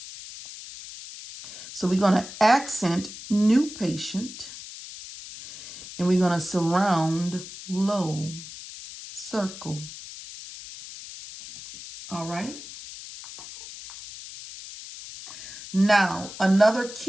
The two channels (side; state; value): left; noise; hiss, 13 dB below the sound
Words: So we're going to accent new patient, and we're going to surround low, circle. All right. Now, another